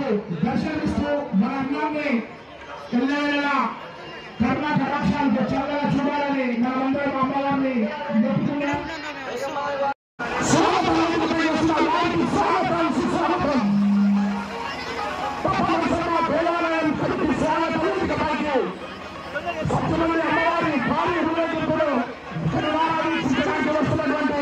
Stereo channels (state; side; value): identical; both; correlation 1.00